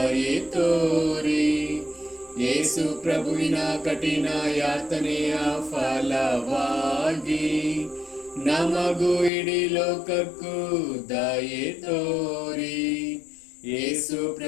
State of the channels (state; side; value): drops out; right; at 9.3 s